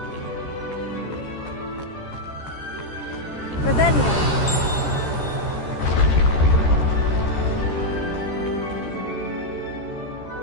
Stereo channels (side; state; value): right; late; 13 ms